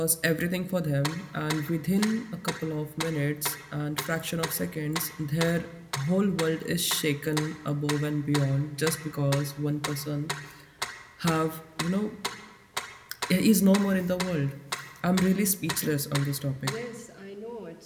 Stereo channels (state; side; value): identical; both; correlation 1.00